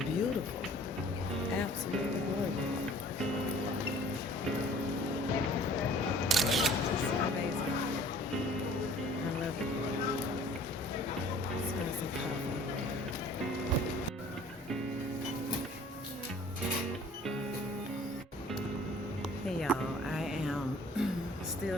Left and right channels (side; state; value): both; normal; correlation 0.51